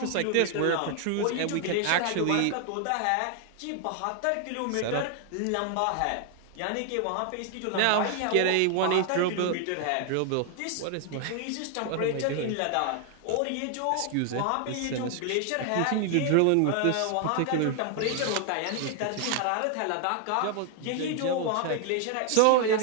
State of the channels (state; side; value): different; both; correlation 0.00